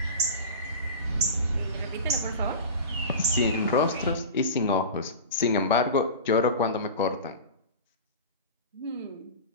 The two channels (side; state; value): both; inverted; correlation -0.30